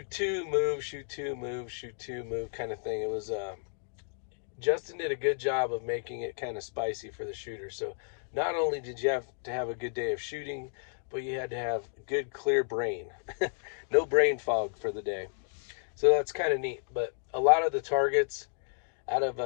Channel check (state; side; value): silent; right; digital silence